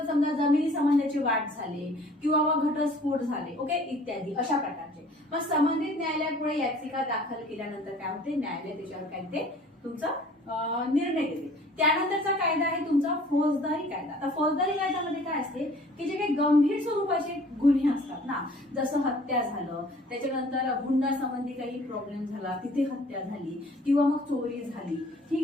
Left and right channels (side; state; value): both; normal; correlation 0.52